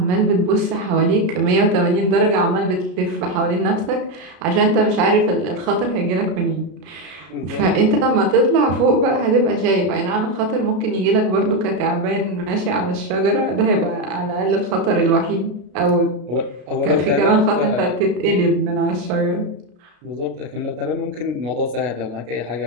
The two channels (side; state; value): left; late; 33 ms